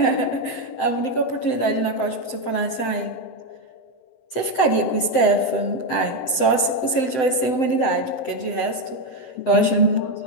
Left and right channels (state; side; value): late; right; 7.8 ms